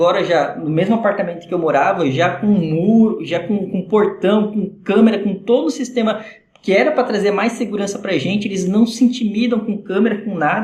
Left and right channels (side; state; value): both; identical; correlation 1.00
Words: já no mesmo apartamento que eu morava, já com muro, já com portão, com câmera, com todo o sistema que era para trazer mais segurança para a gente. Eles não se intimidam com câmera, com